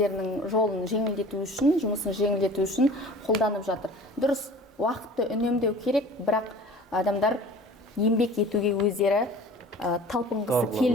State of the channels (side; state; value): both; normal; correlation 0.44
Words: жолын жеңілдету үшін, жұмысын жеңілдету үшін қолданып жатыр. Дұрыс, уақытты үнемдеу керек, бірақ адамдар еңбек етуге өздері талпынғысы